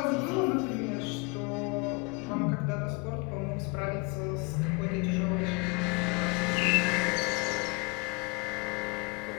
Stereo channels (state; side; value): quieter; right; 29.2 dB